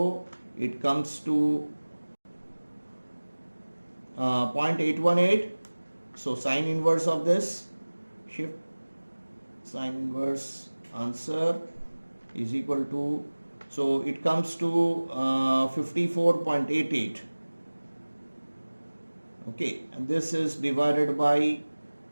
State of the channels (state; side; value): inverted; both; correlation -1.00